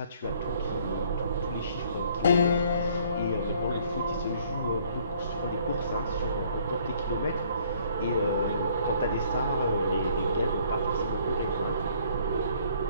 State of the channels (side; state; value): both; inverted; correlation -0.61